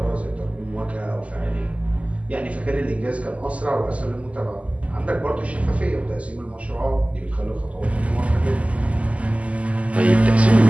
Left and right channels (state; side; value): late; left; 0.066 ms